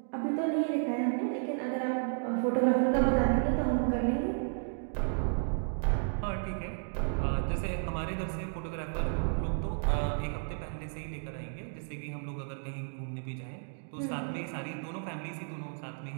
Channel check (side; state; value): left; silent; digital silence